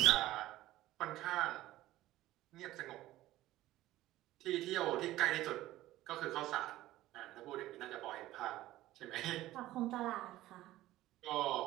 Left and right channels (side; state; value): left; quieter; 15.7 dB